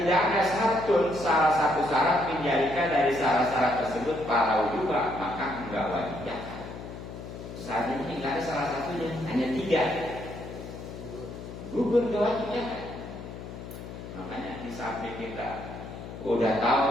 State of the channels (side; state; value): left; noise; hum, 11 dB below the sound